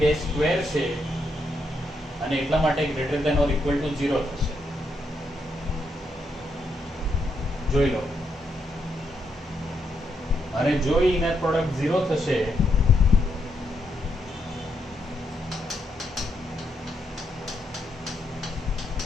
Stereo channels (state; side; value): normal; both; correlation 0.79